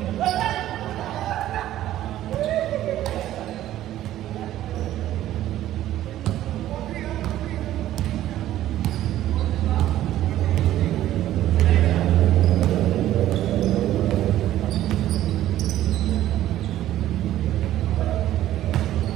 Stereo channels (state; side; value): quieter; left; 13.3 dB